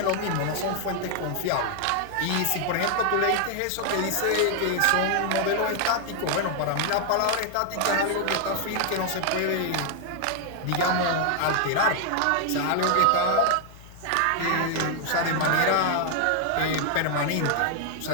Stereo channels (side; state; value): both; different; correlation 0.00